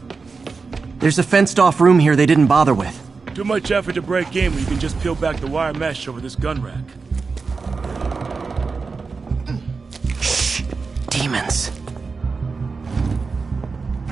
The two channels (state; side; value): quieter; left; 4.6 dB